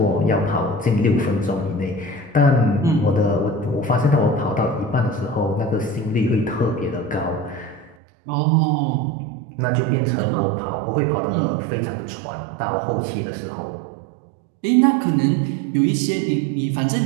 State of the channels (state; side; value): drops out; left; at 8.0 s